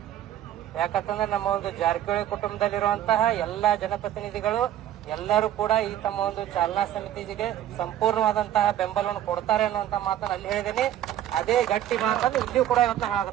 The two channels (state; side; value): quieter; left; 11.8 dB